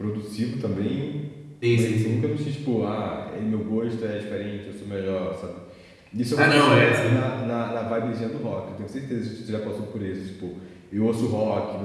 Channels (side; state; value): both; identical; correlation 1.00